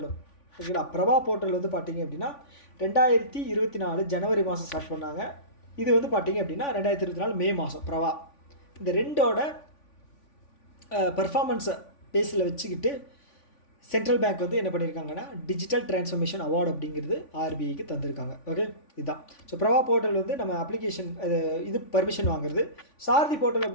ஓகேங்களா? பிரபா போர்ட்டல் வந்து பார்த்திங்க அப்படின்னா 2024 ஜனவரி மாதம் ஸ்டார்ட் பண்ணாங்க. இது வந்து பார்த்திங்க அப்படின்னா 2024 மே மாதம் பிரபா. இந்த ரெண்டோட பர்ஃபார்மன்ஸை பேஸில் வச்சுக்கிட்டு சென்ட்ரல் பேங்க் வந்து என்ன பண்ணியிருக்காங்கன்னா, டிஜிட்டல் டிரான்ஸ்ஃபர்மேஷன் அவார்டு அப்படிங்கிறது ஆர்பிஐக்கு தந்திருக்காங்க. ஓகே, இதுதான். ஸோ பிரபா போர்ட்டல் வந்து நம்ம அப்ளிகேஷன் இது பர்மிஷன் வாங்குறது. சாரதி போர்ட்டல்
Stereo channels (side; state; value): right; late; 3.5 ms